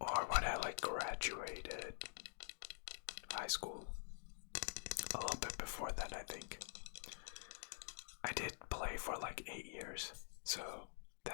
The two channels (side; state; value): right; silent; digital silence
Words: when I like graduated high school. A little bit before that, I think. I did play for like 8 years, so